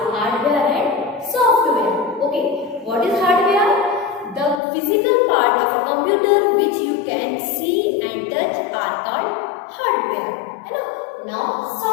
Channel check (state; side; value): drops out; right; at 4.6 s